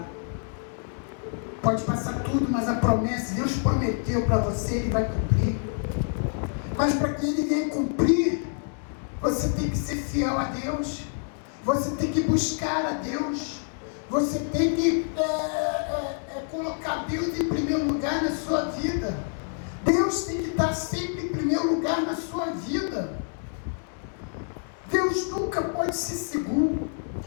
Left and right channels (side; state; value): right; silent; 60 dB below the other